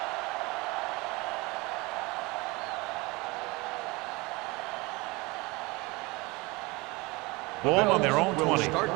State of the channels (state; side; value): quieter; left; 24.3 dB